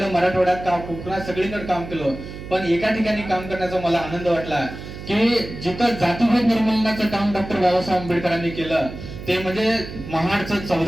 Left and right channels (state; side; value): noise; right; hum, 11 dB below the sound